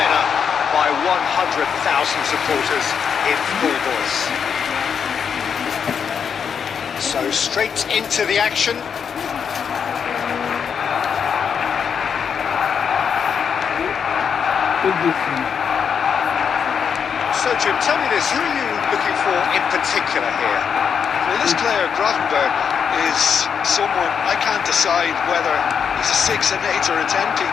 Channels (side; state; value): right; quieter; 7.0 dB